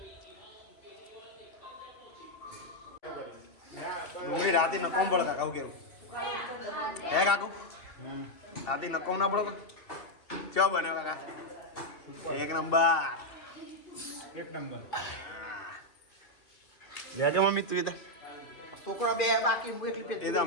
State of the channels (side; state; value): right; late; 2.7 ms